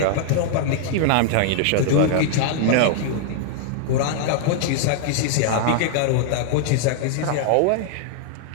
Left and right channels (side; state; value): both; different; correlation -0.01